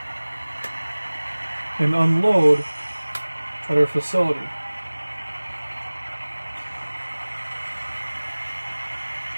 And unload at our facility.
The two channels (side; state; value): both; inverted; correlation -1.00